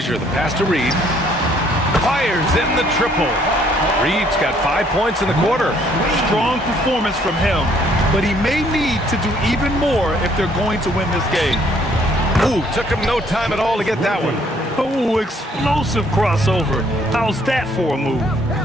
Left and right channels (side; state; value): both; normal; correlation 0.64